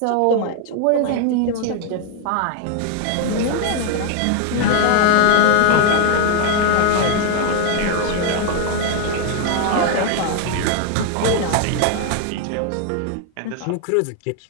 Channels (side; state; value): both; different; correlation 0.00